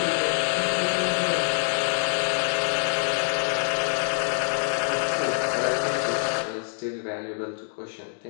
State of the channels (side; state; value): right; silent; digital silence